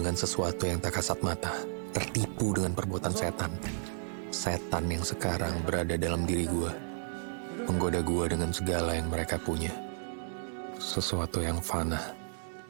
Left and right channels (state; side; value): silent; left; 56 dB below the other